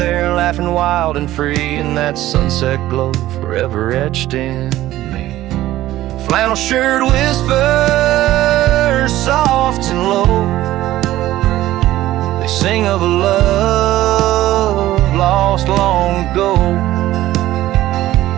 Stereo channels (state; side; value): quieter; left; 15.0 dB